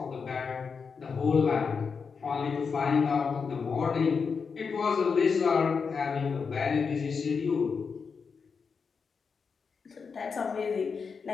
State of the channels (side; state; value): right; quieter; 5.5 dB